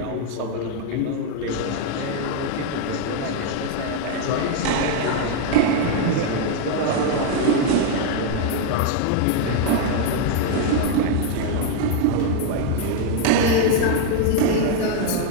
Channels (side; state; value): both; different; correlation 0.01